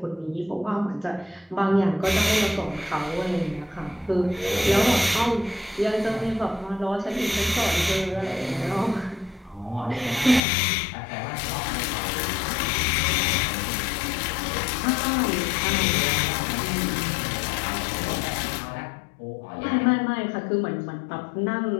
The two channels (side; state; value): right; drops out; at 10.4 s